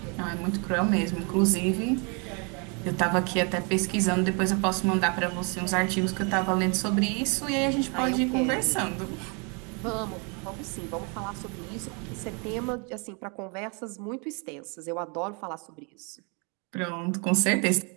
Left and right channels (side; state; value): left; quieter; 34.5 dB